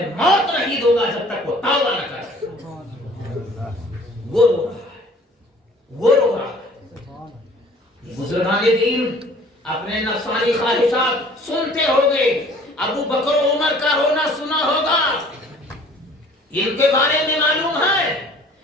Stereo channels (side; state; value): both; normal; correlation 0.52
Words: موت نہیں دوں گا جب تک وہ توبہ نہ کرے. وہ رو رہا ہے، وہ رو رہا ہے. بزرگان دین اپنے نفسانی خواہشات سنتے ہو گئے. ابو بکر و عمر کا رونا سنا ہوگا، ان کے بارے میں معلوم ہے